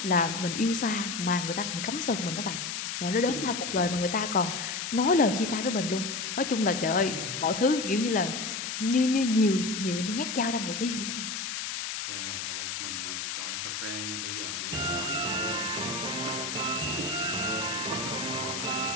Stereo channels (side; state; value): left; noise; hiss, 4 dB below the sound